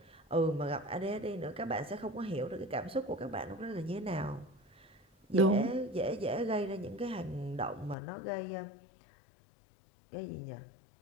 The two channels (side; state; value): right; drops out; at 8.0 s